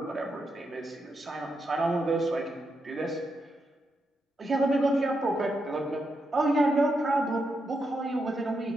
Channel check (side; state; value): both; normal; correlation 0.83